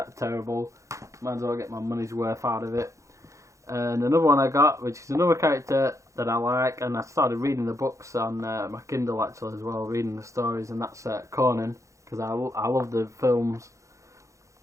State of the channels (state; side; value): late; left; 0.15 ms